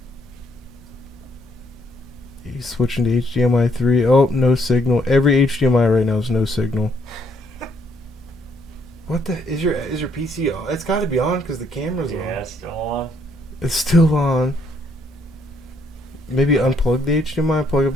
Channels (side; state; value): both; normal; correlation 0.70